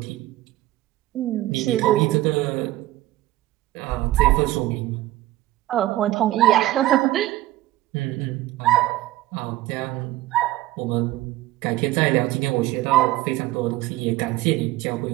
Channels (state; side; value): quieter; left; 16.3 dB